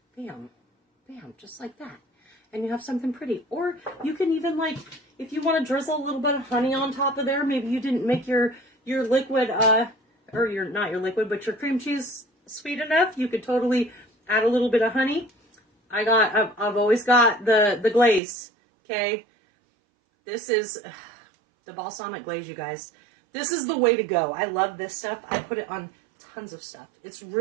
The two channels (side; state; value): left; drops out; at 18.2 s